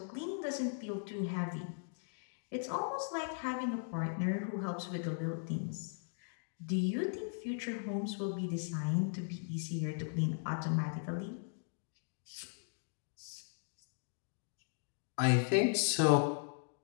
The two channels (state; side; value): silent; right; digital silence